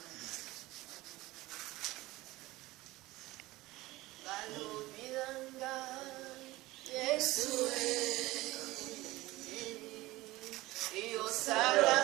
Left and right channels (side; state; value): left; quieter; 19.0 dB